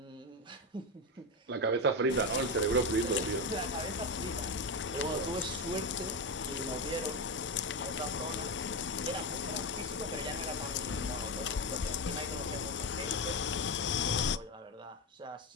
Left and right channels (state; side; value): normal; both; correlation 0.13